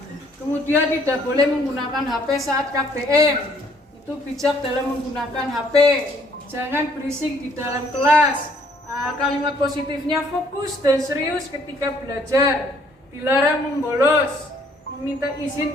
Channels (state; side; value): normal; both; correlation 0.63